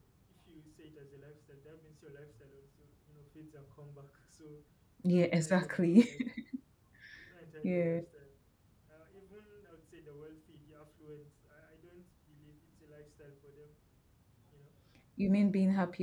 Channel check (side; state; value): both; identical; correlation 1.00